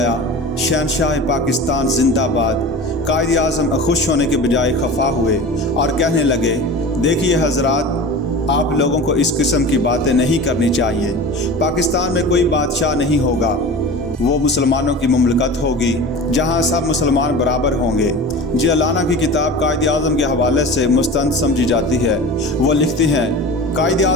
शहनशाह पाकिस्तान जिंदाबाद। कायद आज़म खुश होने के बजाय खफा हुए और कहने लगे, देखिए हजरात, आप लोगों को इस किस्म की बातें नहीं करनी चाहिए। पाकिस्तान में कोई बादशाह नहीं होगा, वो मुसलमानों की मुमलकत होगी जहां सब मुसलमान बराबर होंगे। जिलाना की किताब कायद आज़म के हवाले से मुस्तंद समझी जाती है। वो लिखते हैं, कायद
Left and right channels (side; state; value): both; normal; correlation 0.34